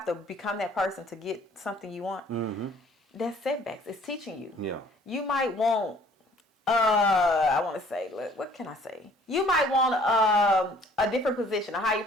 to become that person to get something you want? That's setbacks. It's teaching you. Yeah. You might want, I want to say, what can I say? You might want a different position, a higher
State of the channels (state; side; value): normal; both; correlation 0.56